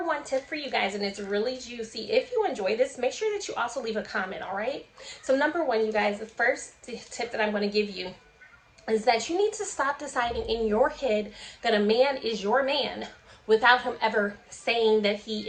tip for you guys, and it's really juicy. If you enjoy this, make sure that you also leave a comment, all right? So number one, you guys, the first tip that I'm going to give you is that you need to stop deciding in your head that a man is your man without him ever saying that he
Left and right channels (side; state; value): both; identical; correlation 1.00